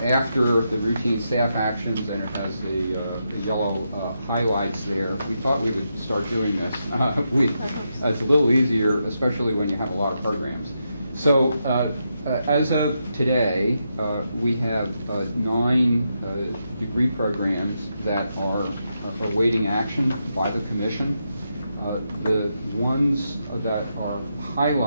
after the routine staff actions, and it has the yellow highlights there. We thought we would start doing this. It's a little easier, especially when you have a lot of programs. So as of today, we have 9 degree programs that are awaiting action by the Commission. The ones that are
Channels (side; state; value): both; inverted; correlation -0.84